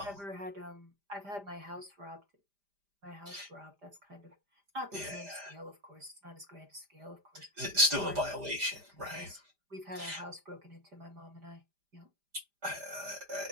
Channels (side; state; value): left; late; 5.0 ms